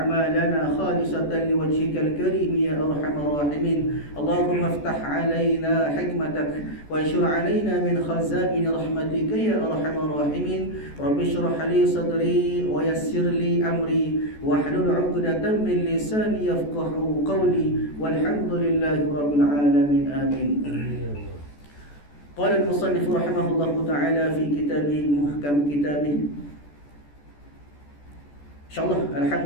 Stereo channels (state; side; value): late; right; 14 ms